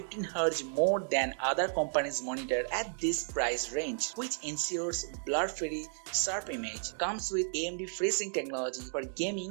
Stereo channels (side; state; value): left; silent; digital silence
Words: Hz more than other companies' monitor at this price range, which ensures blur-free, sharp image. Comes with AMD FreeSync technology for